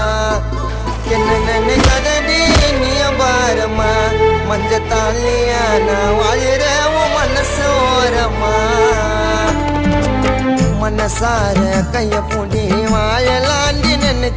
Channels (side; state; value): both; identical; correlation 1.00